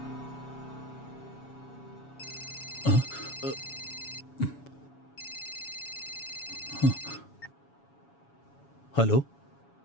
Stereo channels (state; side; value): late; right; 7.2 ms